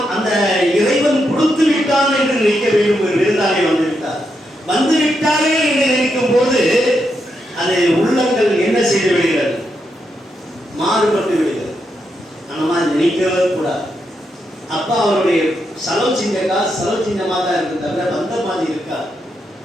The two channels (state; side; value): normal; both; correlation 0.82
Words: அந்த இறைவன் கொடுத்து விட்டான் என்று நினைக்க வேண்டும். ஒரு விருந்தாளி வந்து விட்டாரே என்று நினைக்கும் போது அது உள்ளங்கள் என்ன செய்து விடுகிறது? மாறுபட்டு விடுகிறது. அந்த மாதிரி நினைக்கவே கூடாது. அப்பா அவருடைய செலவு செஞ்ச காசு செலவு செஞ்சமா தான் இருக்கு, தவிர வந்த மாதிரி இருக்கா.